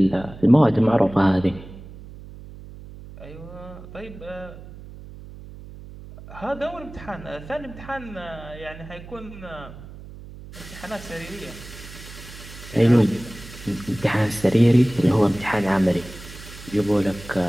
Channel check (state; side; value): noise; right; hum, 16 dB below the sound